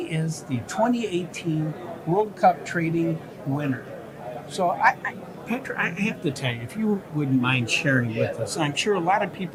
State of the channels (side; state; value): both; identical; correlation 1.00